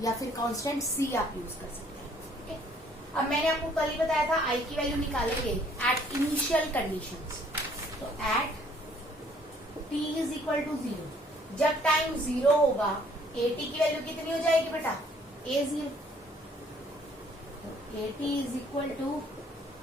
या फिर कांस्टेंट सी आप यूज कर सकते हैं, ठीक है। अब मैंने आपको कल ही बताया था आई की वैल्यू निकालेंगे एट इनिशियल कंडीशंस। तो at T is equal to 0, जब टाइम 0 होगा ए टी की वैल्यू कितनी हो जाएगी बेटा, ए 0। तो A T is equal to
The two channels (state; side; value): normal; both; correlation 0.61